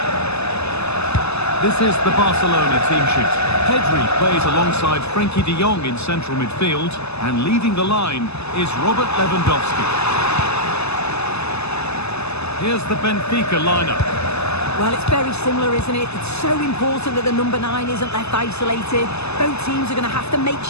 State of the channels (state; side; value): late; right; 0.79 ms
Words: This is the Barcelona team sheet. Pedri plays alongside Frenkie de Jong in central midfield, and leading the line is Robert Lewandowski. Here's the Benfica lineup. Well, it's very similar, isn't it? It's so important that the number 9 isn't left isolated. Both teams are going to have to make